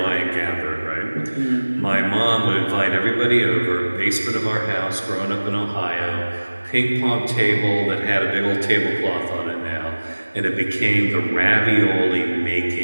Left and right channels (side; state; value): both; inverted; correlation -1.00